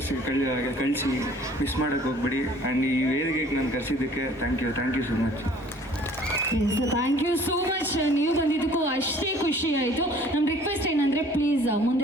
ಕಳಿಸಿ, ಮಿಸ್ ಮಾಡೋಕ್ಕೆ ಹೋಗ್ಬೇಡಿ. ಆ್ಯಂಡ್ ಈ ವೇದಿಕೆಗೆ ನಾನು ಕರೆಸಿದ್ದಕ್ಕೆ thank you so much. Thank you so much. ನೀವು ಬಂದಿದ್ದಕ್ಕೂ ಅಷ್ಟೇ ಖುಷಿ ಆಯಿತು. ನಮ್ಮ ರಿಕ್ವೆಸ್ಟ್ ಏನಂದರೆ ಪ್ಲೀಸ್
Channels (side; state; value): both; normal; correlation 0.53